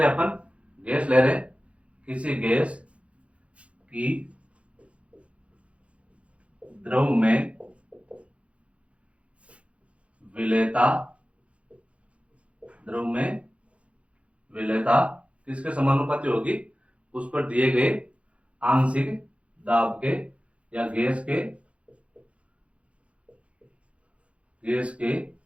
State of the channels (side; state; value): left; late; 0.062 ms